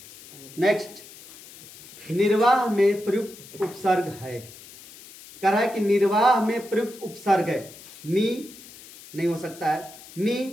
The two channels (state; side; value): noise; left; hiss, 19 dB below the sound